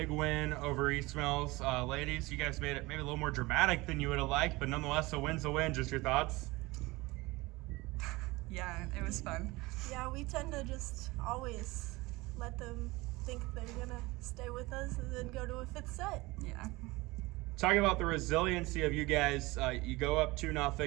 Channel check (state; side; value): quieter; left; 22.0 dB